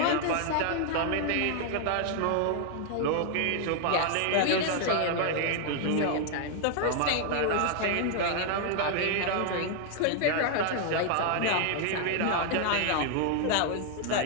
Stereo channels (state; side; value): different; both; correlation 0.00